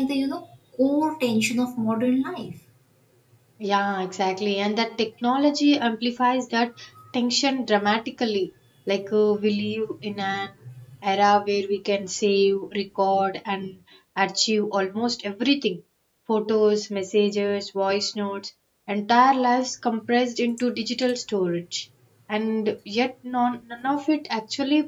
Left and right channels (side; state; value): both; identical; correlation 1.00